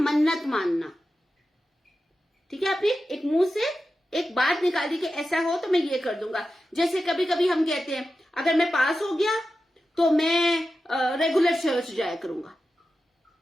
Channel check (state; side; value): normal; both; correlation 0.92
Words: मानना। ठीक है, आपने एक मुंह से एक बात निकाली कि ऐसा हो तो मैं ये कर दूंगा। जैसे कभी कभी हम कहते हैं अगर मैं पास हो गया तो मैं रेगुलर चर्च जाया करूंगा।